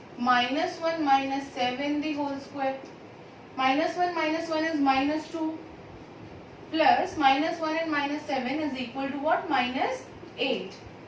minus 1 minus 7 the whole square. Minus 1 is minus 2 plus minus 1 and minus 7 is equal to what? Minus 8.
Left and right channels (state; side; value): identical; both; correlation 1.00